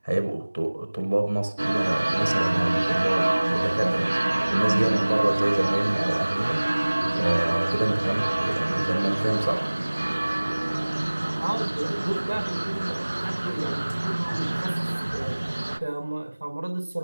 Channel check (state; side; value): inverted; both; correlation -1.00